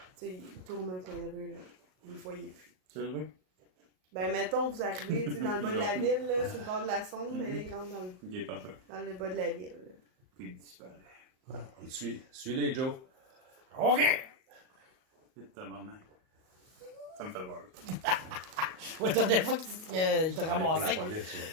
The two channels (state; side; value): late; left; 38 ms